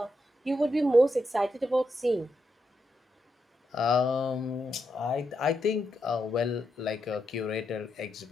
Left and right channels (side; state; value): both; normal; correlation 0.83